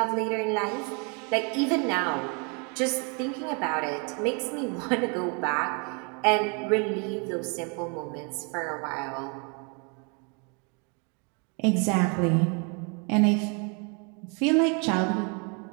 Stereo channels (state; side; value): quieter; left; 35.1 dB